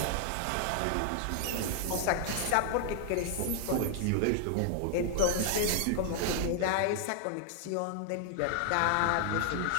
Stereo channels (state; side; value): different; both; correlation 0.00